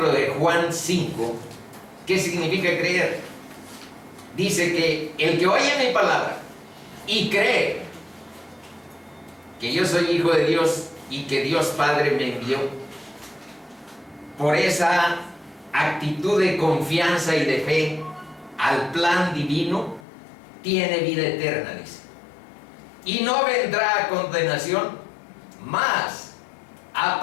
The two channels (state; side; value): drops out; right; at 20.1 s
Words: de Juan 5, ¿qué significa creer? Dice que el que oye mi palabra y cree que yo soy hijo de Dios y que Dios Padre me envió, por esa actitud de confianza y de fe al plan divino, tiene vida eterna, dice. Y no vendrá a condenación, mas ha